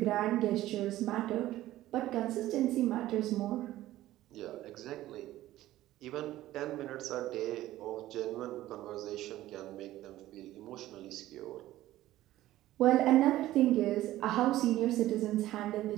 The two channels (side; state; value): left; quieter; 15.0 dB